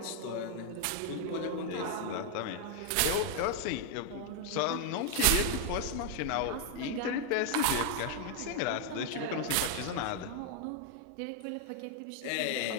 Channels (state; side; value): different; both; correlation 0.00